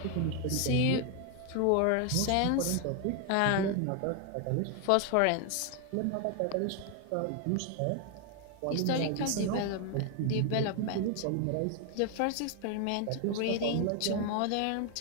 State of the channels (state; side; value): different; both; correlation 0.01